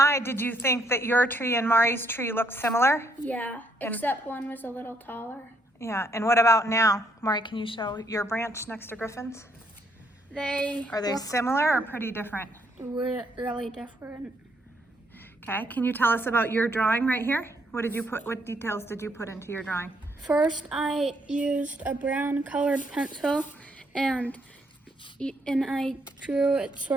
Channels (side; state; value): both; normal; correlation 0.71